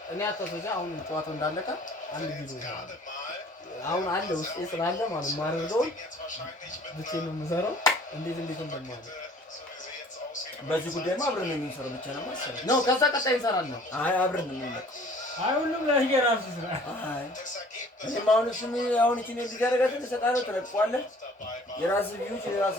እኔ አታስወዛ አሁን ጨዋታው እንዳለቀ አንድ ቪዲዮ አሁን አለ ውስጤ ስላለ ማለት ማረገው ብቻዬን ነው የምሰራው እንዴት እንደማለ በዚህ ጉዳይማ አብረን ነው የምንሰራው ብቻ ነው ማለት ነው ከዛ ቀጣይ እንሰራለን አይ አብረን ነው የምንመጣው አይ ሁሉም ለየራሱ ስራ አይ እኔም አሁን እሱም አሁን እቺ ነው ሊጋረጋት ተሰጣለው ተለቋለህ የራስ ቪውች የራስ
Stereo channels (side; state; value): both; normal; correlation 0.52